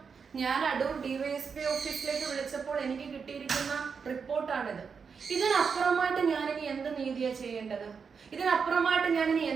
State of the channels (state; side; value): quieter; left; 5.9 dB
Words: ഞാൻ അടൂർ ഡിവൈഎസ്പി ഓഫീസിലേക്ക് വിളിച്ചപ്പോൾ എനിക്ക് കിട്ടിയിരിക്കുന്ന റിപ്പോർട്ടാണിത്. ഇതിനപ്പുറമായിട്ട് ഞാനിനി എന്ത് നീതിയാ ചെയ്യേണ്ടത്? ഇതിനപ്പുറമായിട്ട് ഞാനിനി